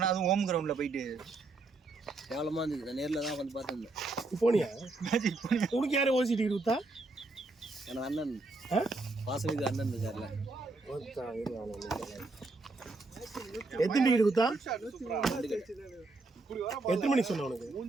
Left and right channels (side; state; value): left; quieter; 3.3 dB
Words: அதுவும் ஹோம் கிரவுண்டில் போயிட்டு கேவலமாக இருந்துச்சு. நான் நேரில் தான் வந்து பார்த்துருந்தேன். போனியா உனக்கு யாரும் ஓசி டிக்கெட் கொடுத்தா? எனக்கு அண்ணன் வாசலுக்கு அண்ணன் இருக்கார்ல. எத்தனை டிக்கெட் கொடுத்தா? எத்தனை மணிக்கு சொன்ன உனக்கு?